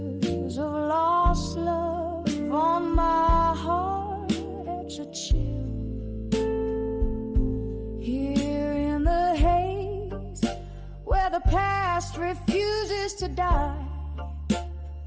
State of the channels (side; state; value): both; identical; correlation 1.00